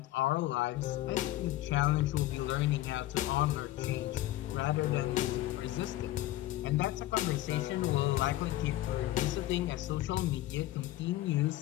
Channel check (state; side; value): quieter; right; 15.6 dB